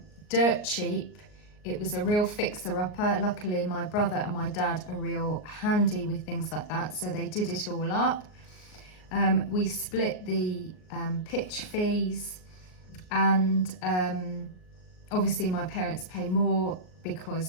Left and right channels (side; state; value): right; late; 38 ms